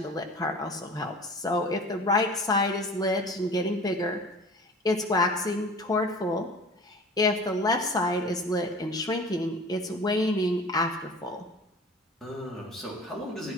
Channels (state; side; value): normal; both; correlation 0.41